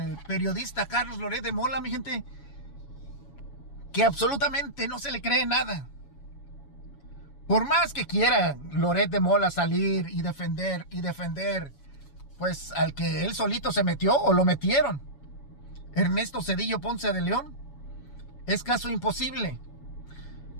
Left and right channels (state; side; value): late; right; 7.1 ms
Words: periodista Carlos Loret de Mola, mi gente, que absolutamente no se le cree nada. Por más que quiera Loret de Mola salir y defender, pues al que él solito se metió o lo metieron, Ernesto Zedillo Ponce de León, es caso imposible.